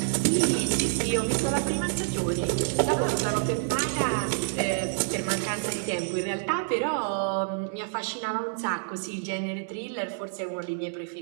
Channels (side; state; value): left; silent; digital silence